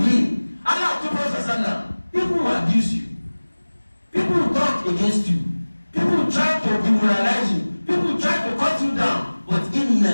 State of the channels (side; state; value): both; inverted; correlation -1.00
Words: Allah told Prophet sallallahu, people will abuse you, people will talk against you, people will try to demoralize you, people will try to cut you down, but